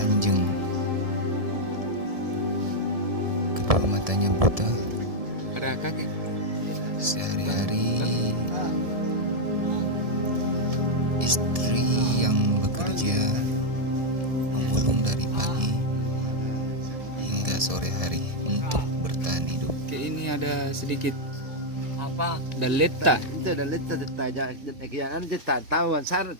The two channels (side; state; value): left; late; 1.7 ms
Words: Kedua matanya buta. Sehari-hari istri yang bekerja memulung dari pagi hingga sore hari untuk bertahan hidup. Ini ada sedikit apa dan letak tahu ansar